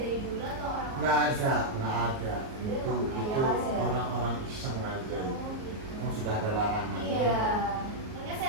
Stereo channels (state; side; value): late; left; 38 ms